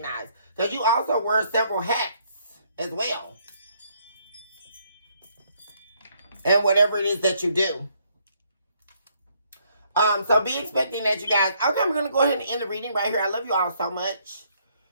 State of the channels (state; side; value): inverted; both; correlation -0.69